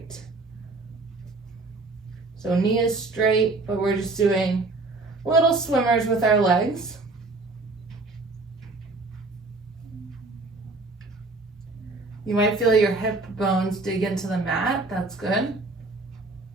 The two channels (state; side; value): quieter; left; 3.4 dB